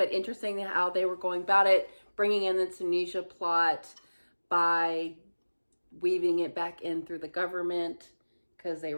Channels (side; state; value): both; inverted; correlation -1.00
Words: interesting how they were going about it, bringing in the Tunisia plot by weaving it back in through the government because they